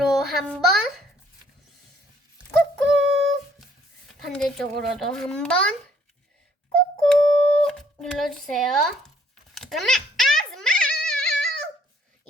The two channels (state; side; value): normal; both; correlation 0.63